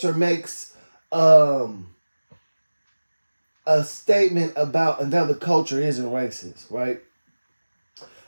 or makes um a statement about another culture isn't racist, right?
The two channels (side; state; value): both; inverted; correlation -1.00